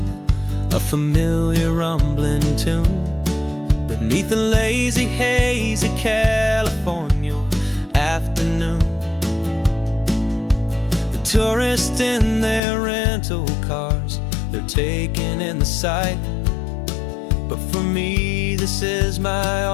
a familiar rumbling tune beneath a lazy, hazy California afternoon. The tourists in their rental cars, they're taking in the sight. But for me, this is my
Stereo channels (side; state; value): right; drops out; at 12.6 s